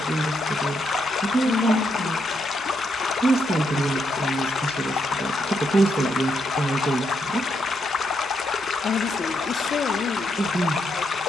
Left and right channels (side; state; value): both; normal; correlation 0.79